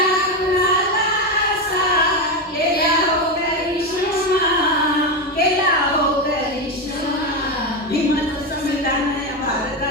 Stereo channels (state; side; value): normal; both; correlation 0.12